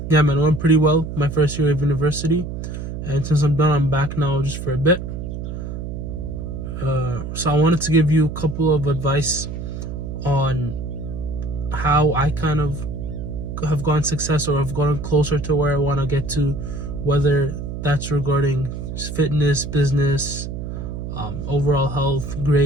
man, it went pretty well my first year of university, and since I'm done, I'm back now just for a bit. So I wanted to give you a couple of advice on how I kind of have gotten success or have gotten closer to where I want to get to, whether that's regarding fitness, business, overall health,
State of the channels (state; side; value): noise; right; hum, 6 dB below the sound